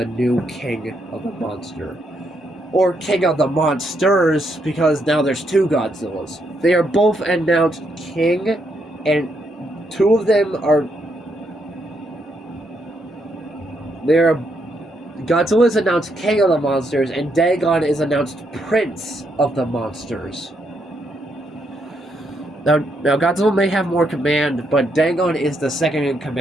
new king of the monster. Or king of the monsters, because now there's two Godzillas. They are both announced king, and two of them are... Godzilla is announced king of the monsters, and Dagon is announced prince of the monsters. Now Godzilla may have more command, but Dagon is the second in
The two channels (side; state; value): both; normal; correlation 0.77